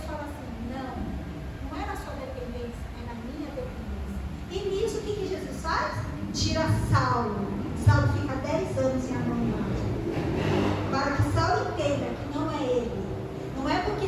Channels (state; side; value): identical; both; correlation 1.00